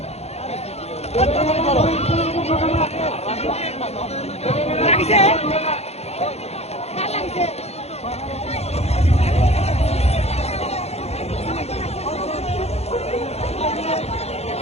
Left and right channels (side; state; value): right; late; 0.31 ms